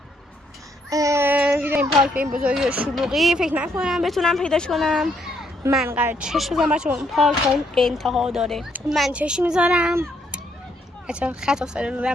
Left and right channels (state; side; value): normal; both; correlation 0.72